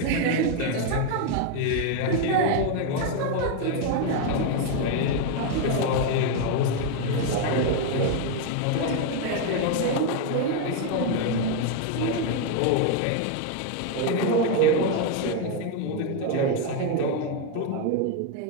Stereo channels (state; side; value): different; both; correlation 0.01